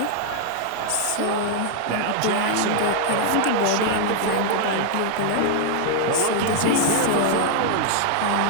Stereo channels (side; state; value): both; different; correlation 0.00